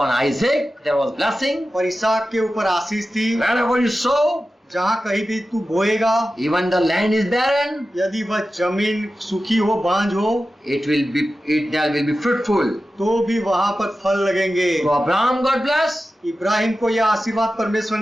Isaac there was blessing. और इसहाक के ऊपर आशीष थी, Wherever you sow, जहाँ कहीं भी तू बोएगा, even the land is barren, यदि वह जमीन सूखी हो, बांझ हो, there will be fruitful. तो भी वहाँ पर फल लगेंगे। So Abraham got blessed. Ibrahim को यह आशीर्वाद परमेश्वर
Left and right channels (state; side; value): normal; both; correlation 0.94